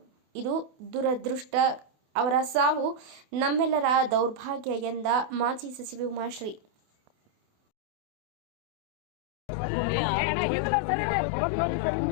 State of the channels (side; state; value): left; late; 28 ms